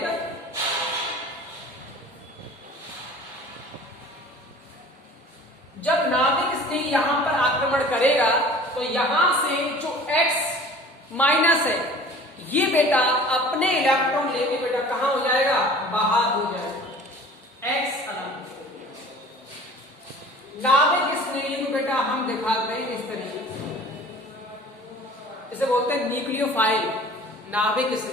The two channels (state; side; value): normal; both; correlation 0.45